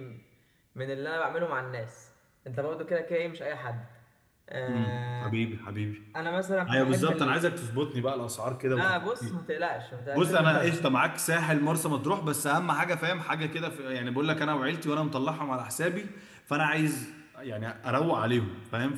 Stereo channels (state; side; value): identical; both; correlation 1.00